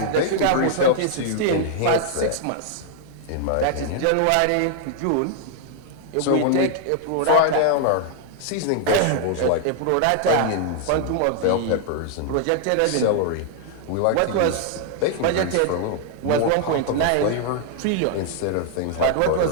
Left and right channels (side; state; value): both; different; correlation 0.00